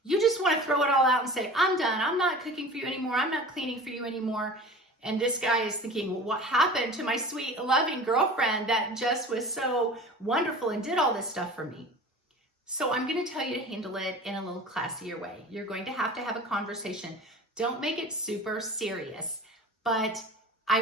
you just want to throw it all out and say, I'm done. I'm not cooking for you anymore. I'm not cleaning for you anymore. And this guy is thinking, well, what happened to my sweet, loving girlfriend that just was so wonderful and did all this stuff for me? So I'm going to tell you to handle it in a little classier way. You're going to have a conversation. Don't make it super serious, but I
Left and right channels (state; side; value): normal; both; correlation 0.38